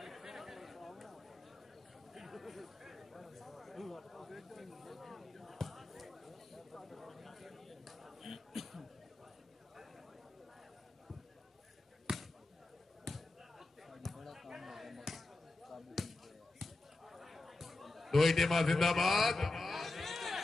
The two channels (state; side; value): quieter; right; 3.0 dB